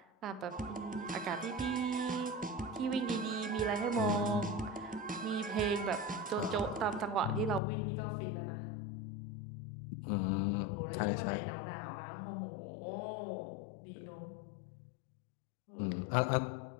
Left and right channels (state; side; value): drops out; right; at 7.6 s